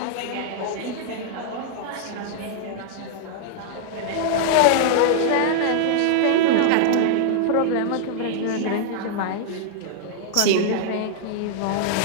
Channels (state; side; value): different; both; correlation -0.01